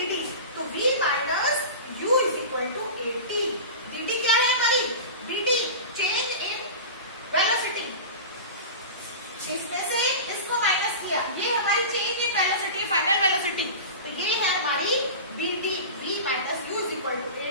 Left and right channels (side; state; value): both; inverted; correlation -0.30